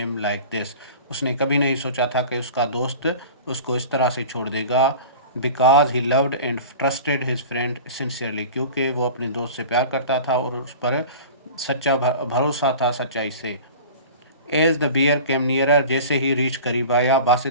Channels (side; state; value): both; inverted; correlation -0.38